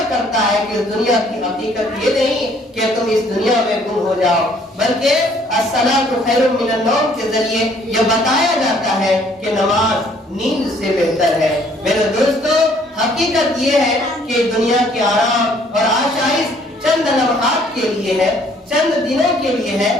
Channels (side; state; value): both; normal; correlation 0.61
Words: کرتا ہے کہ اس دنیا کی حقیقت یہ نہیں کہ تم اس دنیا میں گم ہو جاؤ، بلکہ الصلاۃ خیر من النوم کے ذریعے یہ بتایا جاتا ہے کہ نماز نیند سے بہتر ہے۔ میرے دوستو، حقیقت یہ ہے کہ دنیا کے آرام اور آشائش چند لمحات کے لیے ہے، چند دنوں کے لیے ہے،